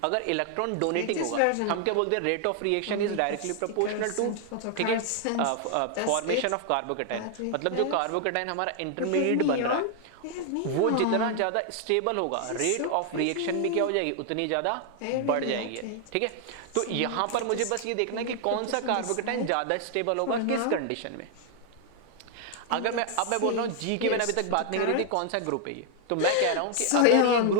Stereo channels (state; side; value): different; both; correlation 0.00